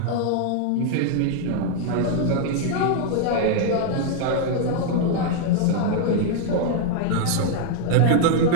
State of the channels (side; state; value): both; different; correlation 0.00